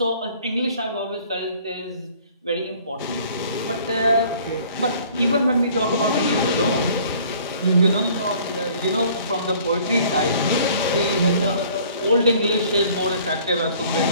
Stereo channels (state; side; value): inverted; both; correlation -0.54